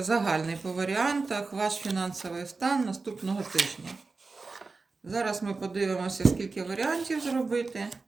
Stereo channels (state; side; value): quieter; left; 4.0 dB